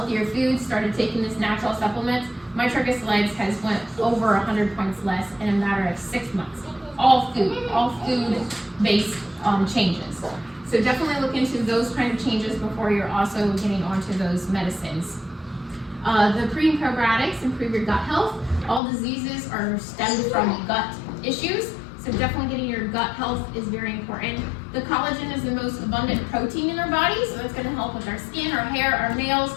foods, started taking this natural supplement. My triglycerides has went over 100 points less in a matter of 6 months. All food-based changes. So definitely look into those kind of changes before you're also getting onto those medicines. The pre and probiotics improve your gut health. All diseases are stemmed from gut issues, so definitely getting your gut health is very important. The collagen is the most abundant protein in our body, so that's going to help with our skin, our hair, our nails,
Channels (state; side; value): drops out; right; at 18.8 s